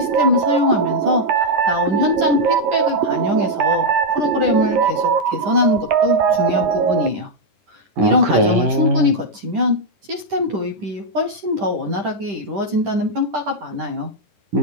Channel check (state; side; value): late; left; 10 ms